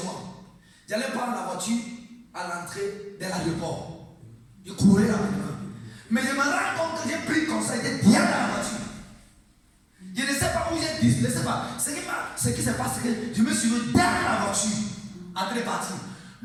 moi. J'allais prendre la voiture à l'entrée de l'aéroport. Je courais rapidement. Mais je me rends compte que j'ai pris comme ça, j'étais bien dans la voiture. Je ne sais pas où j'ai dit, je ne sais pas. Ce qui s'est passé, c'est que je me suis mis dans la voiture, en train de partir.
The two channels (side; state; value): both; identical; correlation 1.00